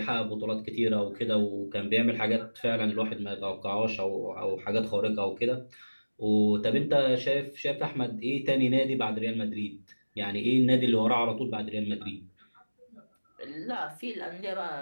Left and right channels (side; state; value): both; inverted; correlation -1.00